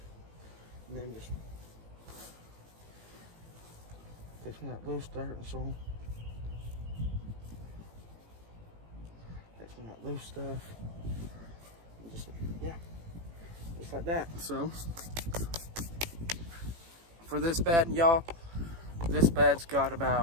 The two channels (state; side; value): late; left; 18 ms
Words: and then just take some of that loose dirt and soil. Take some of that loose stuff. And just, yeah, just like that. So, for this bed, y'all, this bed's got